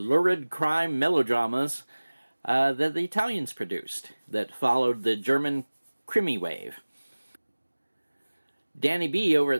crime melodramas that the Italians produced that followed the German Krimi wave. Danny B over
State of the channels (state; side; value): inverted; both; correlation -1.00